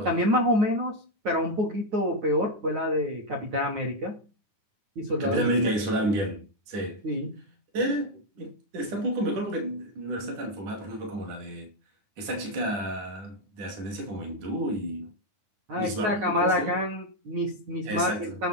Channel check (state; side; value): late; left; 10 ms